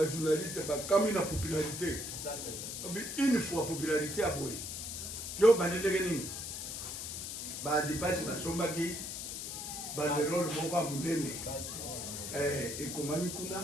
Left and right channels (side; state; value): left; noise; hiss, 6 dB below the sound